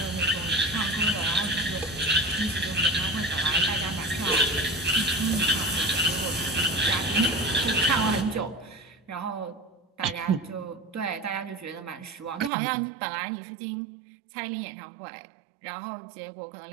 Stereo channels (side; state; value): left; drops out; at 12.5 s